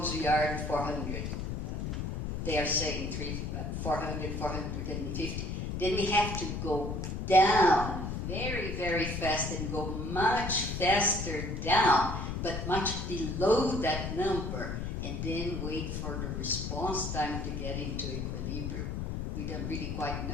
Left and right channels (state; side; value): noise; left; rumble, 3 dB below the sound